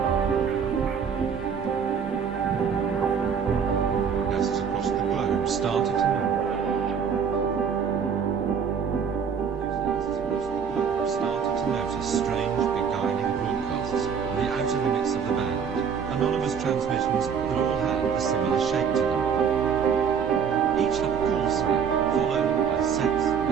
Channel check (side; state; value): left; quieter; 6.9 dB